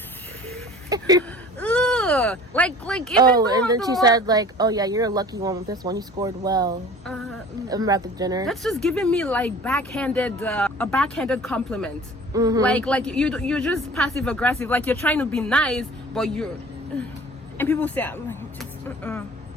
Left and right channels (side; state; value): both; normal; correlation 0.45